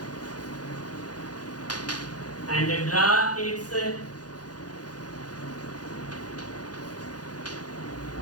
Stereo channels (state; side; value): late; right; 0.69 ms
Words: and draw its